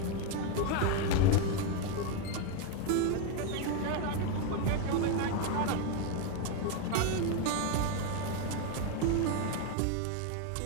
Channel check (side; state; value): both; different; correlation 0.02